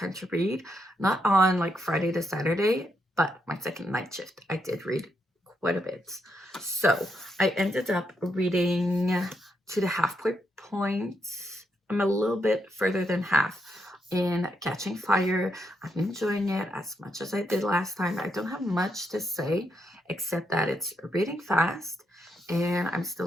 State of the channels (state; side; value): normal; both; correlation 0.79